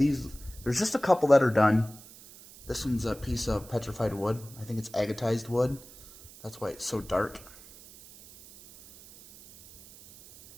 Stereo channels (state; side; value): noise; right; hiss, 20 dB below the sound